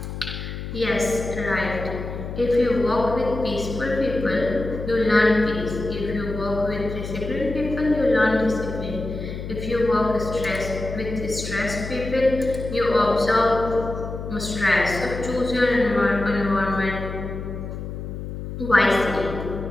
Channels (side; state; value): left; noise; hum, 7 dB below the sound